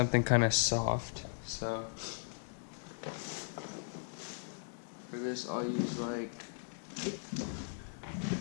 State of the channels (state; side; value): silent; right; digital silence